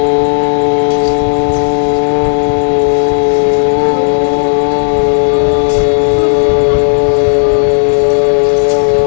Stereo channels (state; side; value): silent; right; digital silence